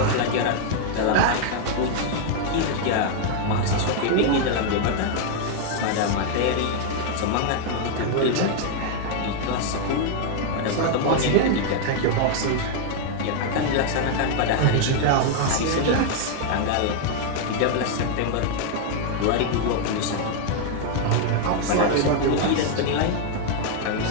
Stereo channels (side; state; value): both; different; correlation 0.00